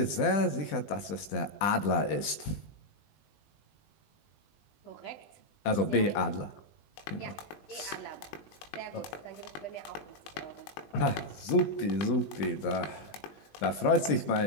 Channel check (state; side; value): late; right; 20 ms